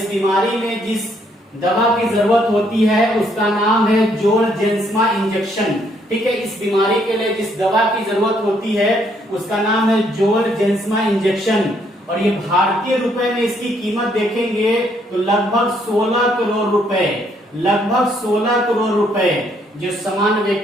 बीमारी में जिस दवा की जरूरत होती है उसका नाम है जोलजेंसमा इंजेक्शन। ठीक है, इस बीमारी के लिए जिस दवा की जरूरत होती है उसका नाम है जोलजेंसमा इंजेक्शन और ये भारतीय रुपए में इसकी कीमत देखेंगे तो लगभग 16 करोड़ रुपए, लगभग 16 करोड़ रुपए, जो सामान्य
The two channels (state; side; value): normal; both; correlation 0.70